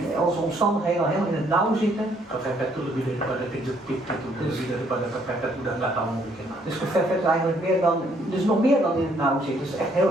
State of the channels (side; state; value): both; normal; correlation 0.67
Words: onze omstandigheden al helemaal in het nauw zitten. kepepet itu lebih daripada kejepit gitu, lebih daripada kepepet udah nggak tahu mau bikin apa. Dus geverfd is eigenlijk meer dan, dus nog meer dan in het nauw zit. Dus echt heel